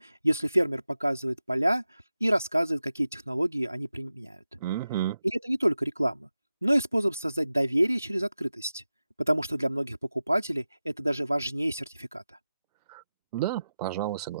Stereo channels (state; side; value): inverted; both; correlation -0.93